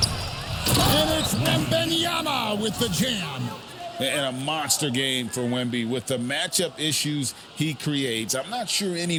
And it's Wembanyama with the jam. And a monster game for Wemby with the matchup issues he creates. I'm not sure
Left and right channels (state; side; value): identical; both; correlation 1.00